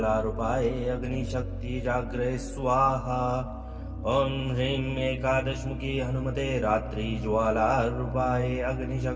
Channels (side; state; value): both; identical; correlation 1.00